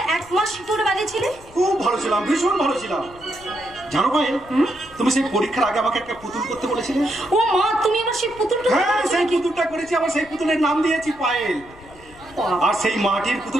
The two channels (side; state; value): left; noise; rumble, 22 dB below the sound